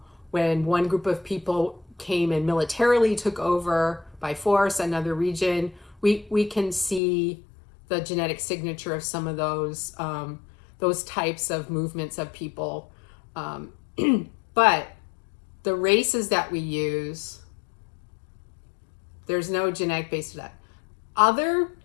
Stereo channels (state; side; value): drops out; right; at 7.0 s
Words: when one group of people came and militarily took over by force another region. We can see the genetic signature of some of those types of movements of people. But the races that we use, there's no genetic base to that. Other